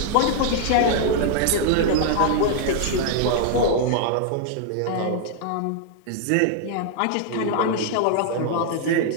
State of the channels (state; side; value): different; both; correlation 0.00